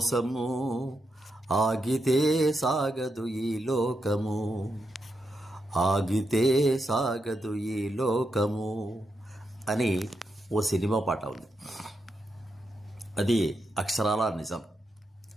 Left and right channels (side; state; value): both; normal; correlation 0.84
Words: ఆగితే సాగదు ఈ లోకము, ఆగితే సాగదు ఈ లోకము అని ఓ సినిమా పాట ఉంది. అది అక్షరాల నిజం.